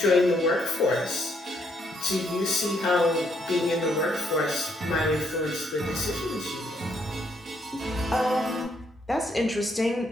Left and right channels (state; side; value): normal; both; correlation 0.72